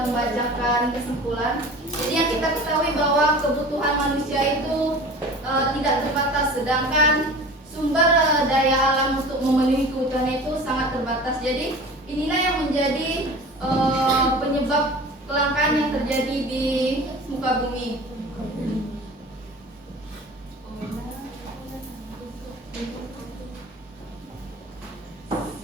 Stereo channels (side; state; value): both; normal; correlation 0.39